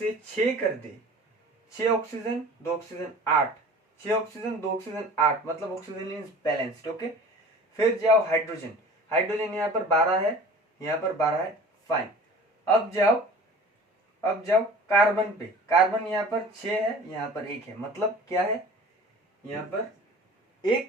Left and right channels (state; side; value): normal; both; correlation 0.43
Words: 6 कर दे, 6 ऑक्सीजन 2 ऑक्सीजन 8, 6 ऑक्सीजन 2 ऑक्सीजन 8, मतलब ऑक्सीजन इज बैलेंस्ड। ओके, फिर जाओ हाइड्रोजन, हाइड्रोजन यहाँ पर 12 है, यहाँ पर 12 है, फाइन। अब जाओ कार्बन पे, कार्बन यहाँ पर 6 है, यहाँ पर 1 है, मतलब क्या है? यहाँ पर